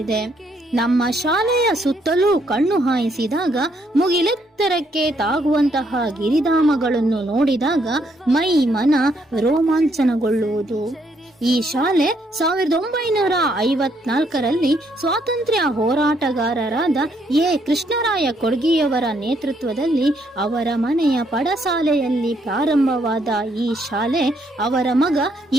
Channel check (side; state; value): both; normal; correlation 0.72